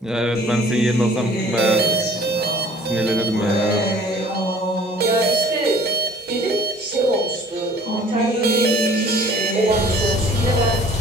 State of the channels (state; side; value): normal; both; correlation 0.52